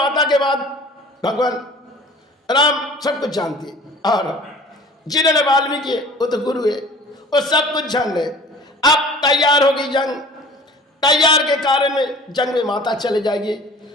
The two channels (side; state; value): both; normal; correlation 0.46